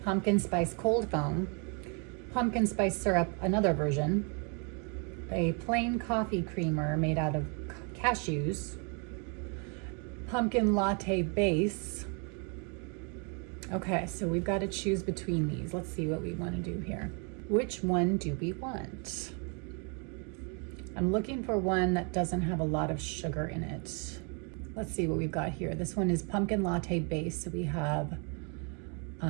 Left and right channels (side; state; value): left; quieter; 36.5 dB